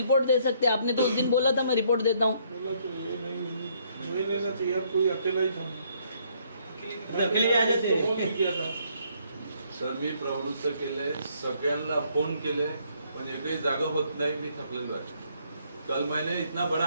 दे सकते. आपने तो उस दिन बोला था मैं रिपोर्ट देता हूँ. लेना चाहिए. कोई अकेला ही था. अकेले आ जाते. किया था. सर मी प्रवृत्त केले, सगळ्यांना फोन केले, पण एकही जागा होत नाही. मी थकलेलो आहे. कल मैंने इतना बड़ा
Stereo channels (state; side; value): inverted; both; correlation -0.68